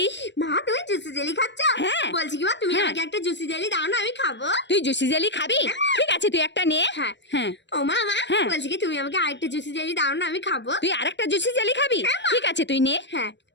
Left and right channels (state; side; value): late; right; 0.52 ms